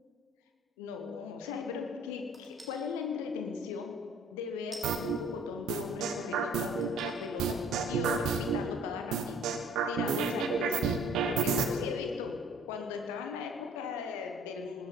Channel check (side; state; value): both; normal; correlation 0.52